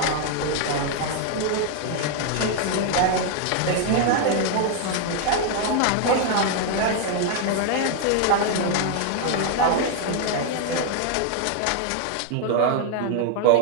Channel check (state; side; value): different; both; correlation 0.00